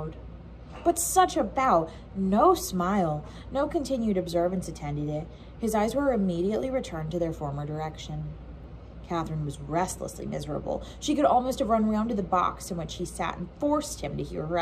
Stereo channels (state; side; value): identical; both; correlation 1.00